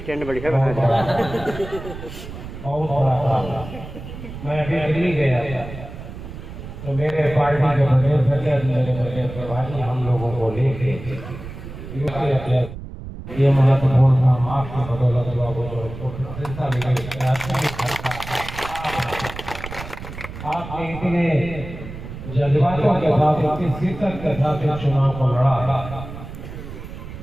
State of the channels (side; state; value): right; noise; rumble, 11 dB below the sound